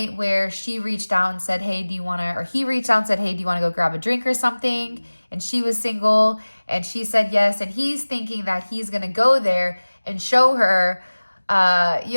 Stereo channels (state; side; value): inverted; both; correlation -1.00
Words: where she reached out and said, hey, he reached out and said, hey, do you want to go grab a drink or something? And she was single, and she said yes. And he's thinking that he's going to go there and show her,